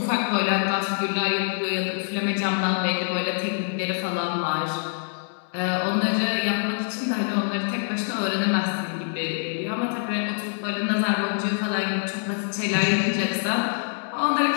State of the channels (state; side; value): silent; right; 62 dB below the other